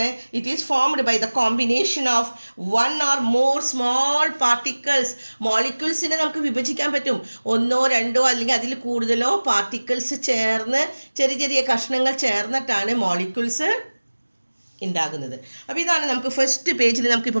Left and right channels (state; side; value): inverted; both; correlation -1.00